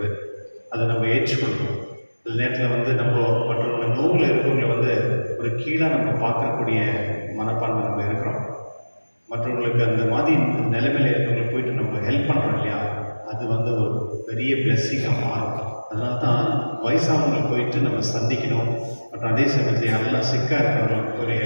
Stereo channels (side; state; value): both; inverted; correlation -1.00